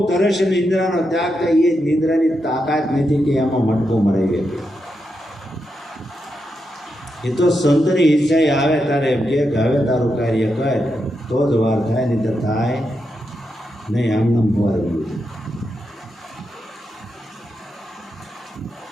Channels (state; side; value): normal; both; correlation 0.85